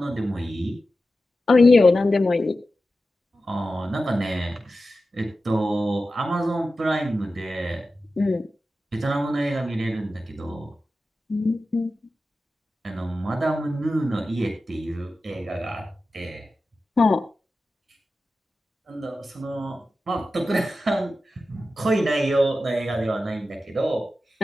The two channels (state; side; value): normal; both; correlation 0.93